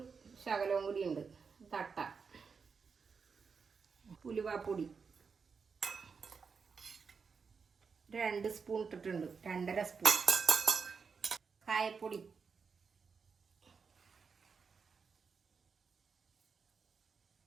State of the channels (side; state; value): left; quieter; 5.5 dB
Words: ശകലവും കൂടി ഉണ്ട്. തട്ട ഉലുവാപ്പൊടി 2 സ്പൂൺ ഇട്ടിട്ടുണ്ട്, 2.5 സ്പൂൺ. കായപ്പൊടി